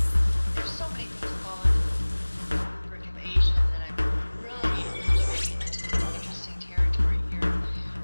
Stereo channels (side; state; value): both; inverted; correlation -1.00